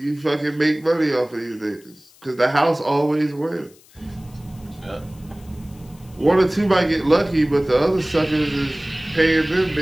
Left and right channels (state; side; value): noise; left; hiss, 27 dB below the sound